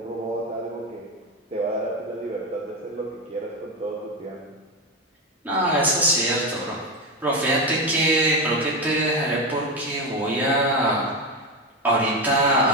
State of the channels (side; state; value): both; normal; correlation 0.14